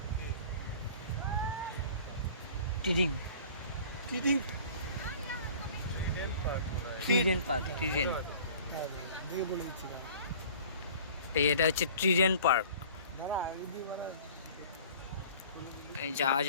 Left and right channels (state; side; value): inverted; both; correlation -0.47